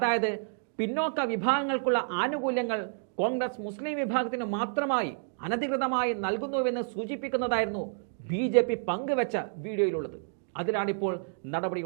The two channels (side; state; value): left; silent; digital silence